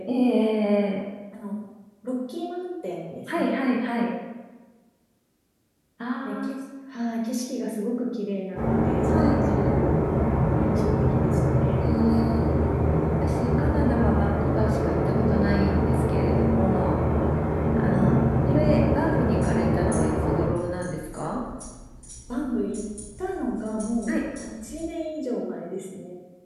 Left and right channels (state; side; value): identical; both; correlation 1.00